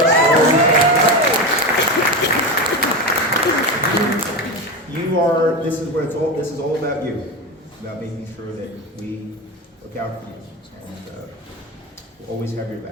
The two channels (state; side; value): normal; both; correlation 0.19